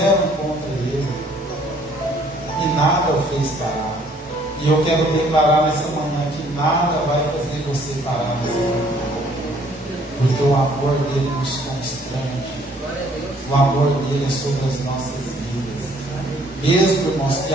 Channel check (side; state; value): both; normal; correlation 0.61